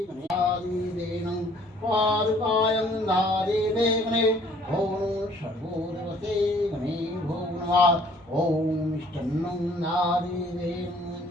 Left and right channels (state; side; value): normal; both; correlation 0.58